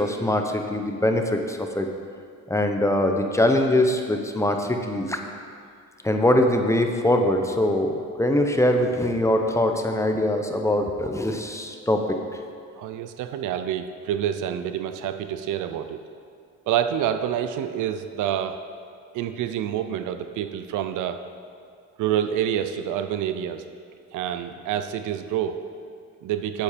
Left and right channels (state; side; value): normal; both; correlation 0.49